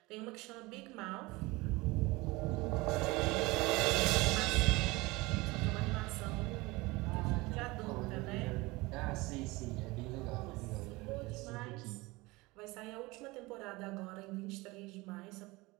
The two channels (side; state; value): left; quieter; 22.5 dB